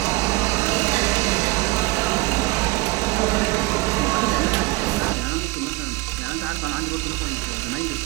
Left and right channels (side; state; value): left; quieter; 21.4 dB